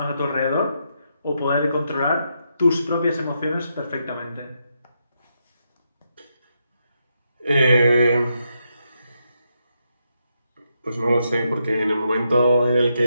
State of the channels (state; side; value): inverted; both; correlation -0.82